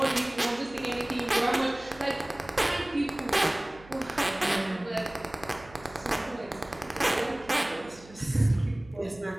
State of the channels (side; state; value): right; noise; hum, 22 dB below the sound